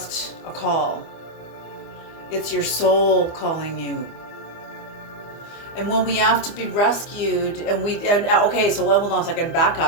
a call. It's your soul calling you. And when we have to be rescued, okay, so hold on a second, back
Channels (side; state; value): right; late; 25 ms